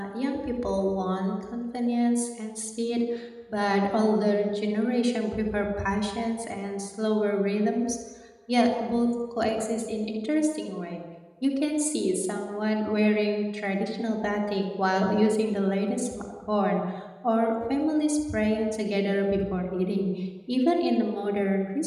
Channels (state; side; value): identical; both; correlation 1.00